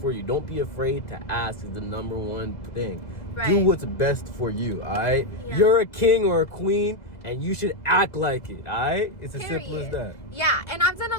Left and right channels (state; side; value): late; right; 1.9 ms